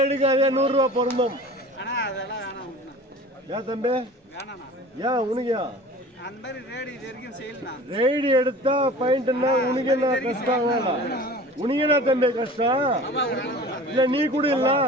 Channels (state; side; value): normal; both; correlation 0.41